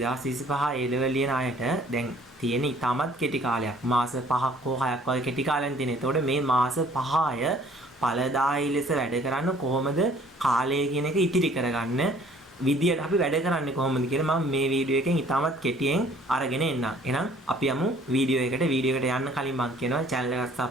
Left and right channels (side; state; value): both; normal; correlation 0.57